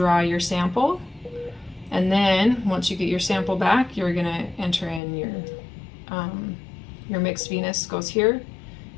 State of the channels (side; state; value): right; drops out; at 5.0 s